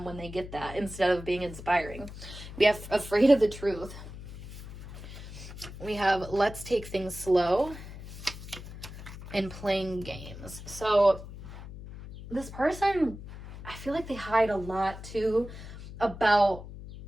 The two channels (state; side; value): noise; left; hum, 13 dB below the sound